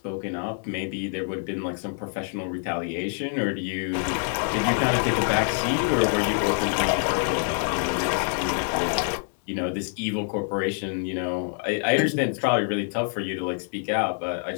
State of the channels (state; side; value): silent; right; 60 dB below the other